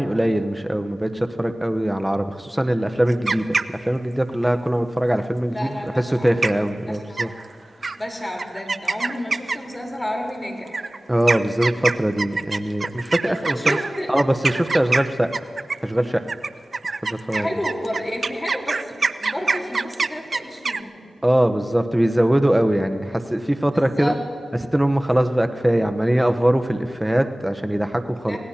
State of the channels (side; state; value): both; normal; correlation 0.98